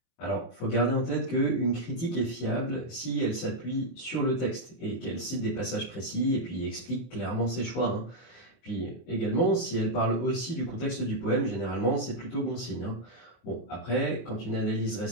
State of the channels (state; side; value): late; right; 23 ms